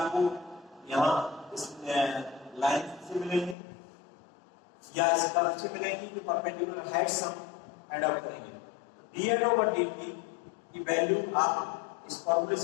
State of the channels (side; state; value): right; drops out; at 3.6 s